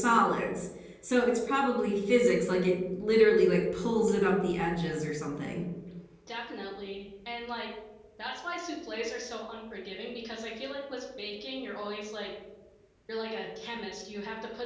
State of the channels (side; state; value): both; identical; correlation 1.00